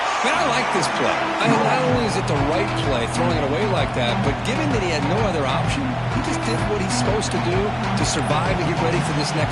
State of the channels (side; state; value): both; identical; correlation 1.00